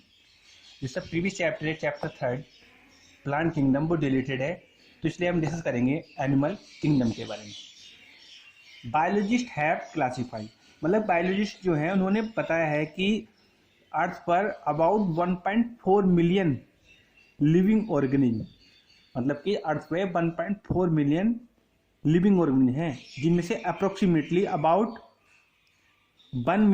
जिसका previous chapter है chapter 3 plant kingdom वो deleted है, तो इसलिए हम डिस्कस करेंगे एनिमल किंगडम के बारे में। बायोलॉजिस्ट हैव क्लासिफाई, मतलब बायोलॉजिस्ट जो हैं उन्होंने बताया है कि अर्थ पर अबाउट 1.4 मिलियन लिविंग ऑर्गेनिज्म, मतलब कि अर्थ पे 1.4 मिलियन लिविंग ऑर्गेनिज्म हैं, जिनमें से approximately about 1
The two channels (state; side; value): identical; both; correlation 1.00